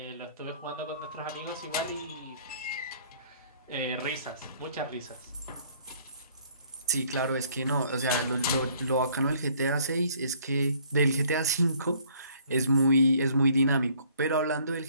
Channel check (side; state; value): both; inverted; correlation -0.60